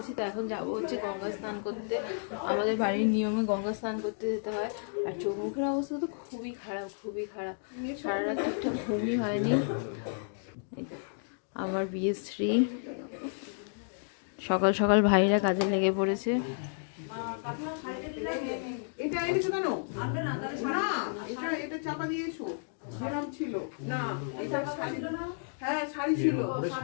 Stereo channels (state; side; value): silent; right; digital silence